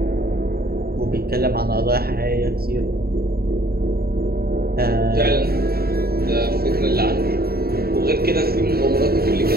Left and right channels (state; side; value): late; left; 0.45 ms